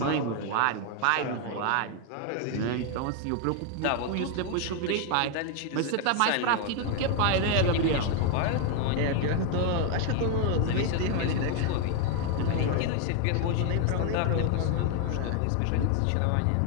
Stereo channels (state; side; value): different; both; correlation 0.01